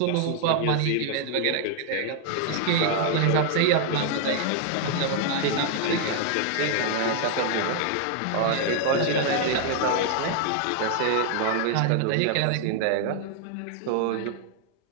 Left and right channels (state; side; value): different; both; correlation 0.00